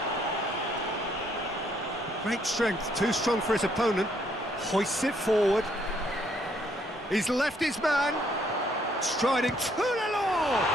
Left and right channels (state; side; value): normal; both; correlation 0.69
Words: Great strength, too strong for his opponent. Hoists it forward. He's left his man. Striding to the law.